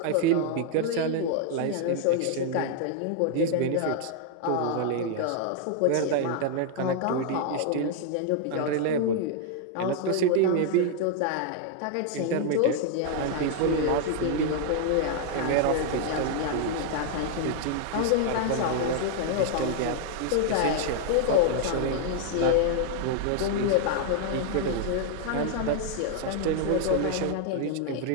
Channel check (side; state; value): both; different; correlation 0.00